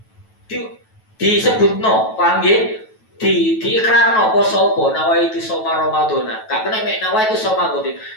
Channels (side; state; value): right; late; 9.2 ms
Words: disebut no, paham ya? Diikrarno poso apa nawa itu soma Ramadhana. Gak kena mek nawa itu soma godin.